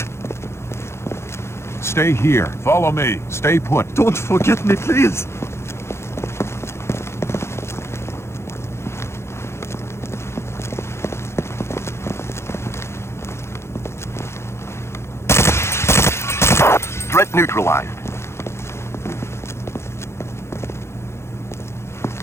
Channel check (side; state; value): right; late; 0.13 ms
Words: Stay here. Follow me. Stay put. Don't forget me, please. Threat neutralized.